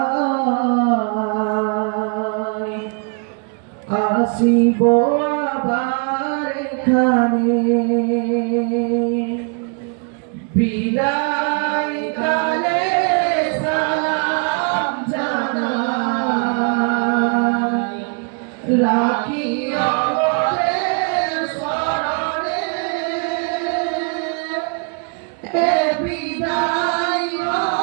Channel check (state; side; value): quieter; left; 37.6 dB